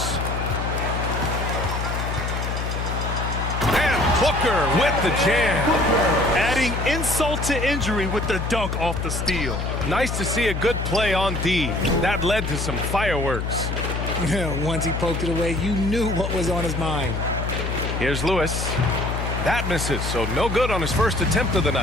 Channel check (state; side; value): noise; left; hum, 3 dB below the sound